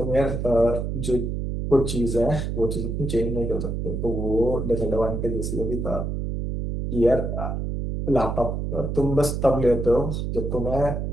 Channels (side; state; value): right; noise; hum, 2 dB below the sound